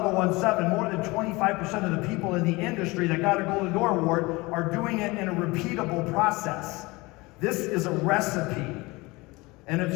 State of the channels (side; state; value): right; quieter; 23.3 dB